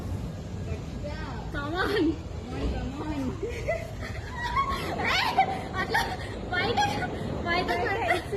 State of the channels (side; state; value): both; identical; correlation 1.00